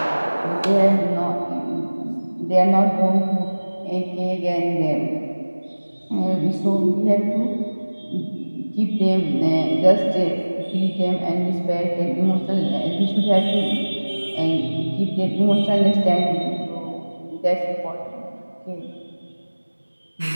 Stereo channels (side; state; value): both; inverted; correlation -1.00